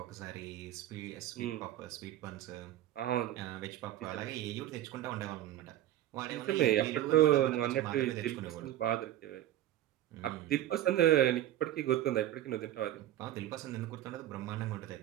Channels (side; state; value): left; quieter; 13.3 dB